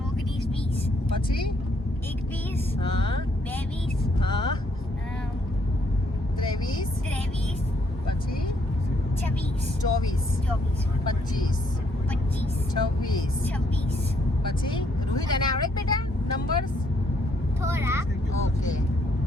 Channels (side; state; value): both; normal; correlation 0.70